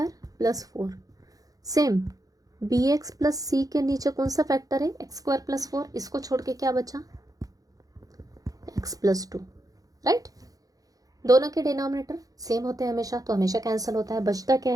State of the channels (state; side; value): late; left; 0.17 ms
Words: plus 4। Same b x plus c के नीचे कौन सा फैक्टर है, एक्स स्क्वायर प्लस 4, इसको छोड़ के क्या बचा, एक्स प्लस टू, राइट। दोनों के डिनोमिनेटर सेम होते हैं हमेशा, तो हमेशा कैंसिल होता है। बचता क्या